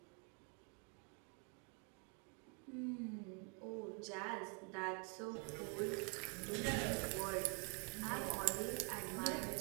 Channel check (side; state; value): left; quieter; 38.2 dB